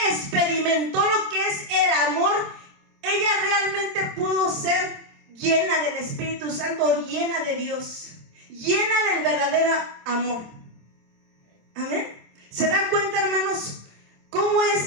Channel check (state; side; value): late; left; 26 ms